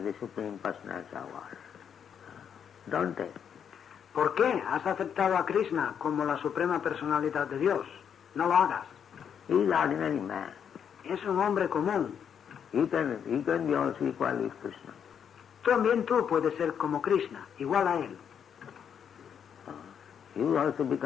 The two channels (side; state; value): right; quieter; 8.0 dB